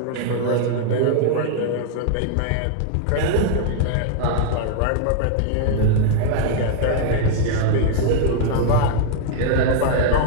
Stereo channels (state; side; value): different; both; correlation 0.00